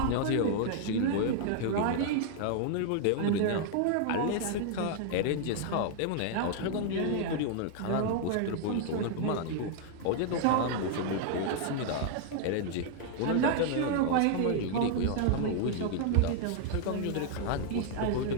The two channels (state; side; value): different; both; correlation 0.00